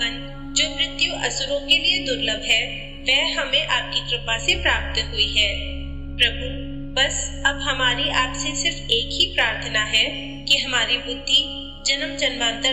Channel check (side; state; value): both; identical; correlation 1.00